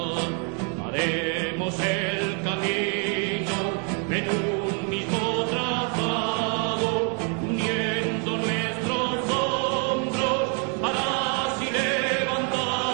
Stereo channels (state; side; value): quieter; left; 39.0 dB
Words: Haremos el camino en un mismo trazado, uniendo nuestros hombros para así